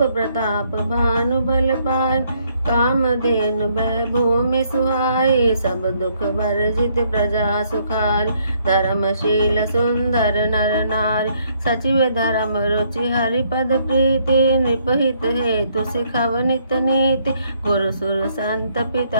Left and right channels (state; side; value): inverted; both; correlation -0.69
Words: प्रताप भानु बल पाय कामधेनु भूमि सुहाई सब दुख वर्जित प्रजा सुखारी धर्मशील सुंदर नर नारी सचिव धर्म रुचि हरिपद प्रीति निपहित हेतु सिखव नित नीति गुरु सुर संत